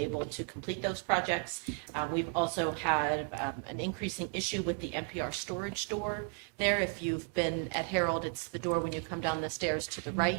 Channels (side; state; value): left; quieter; 37.6 dB